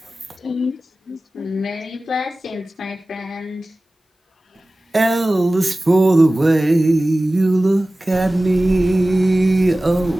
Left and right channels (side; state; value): both; normal; correlation 0.97